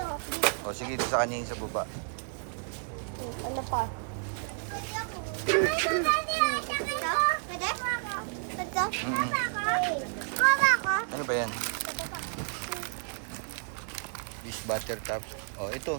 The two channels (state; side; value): silent; left; digital silence